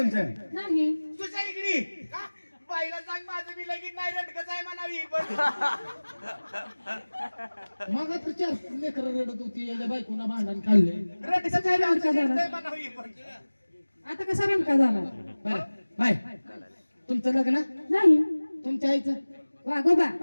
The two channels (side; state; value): both; inverted; correlation -1.00